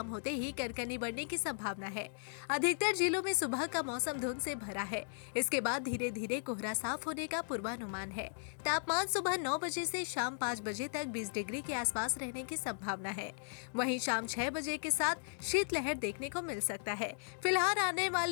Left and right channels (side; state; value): right; silent; digital silence